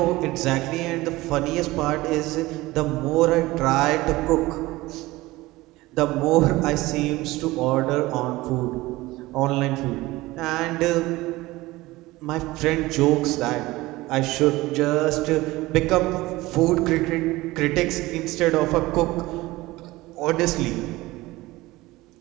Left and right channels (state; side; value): quieter; left; 19.3 dB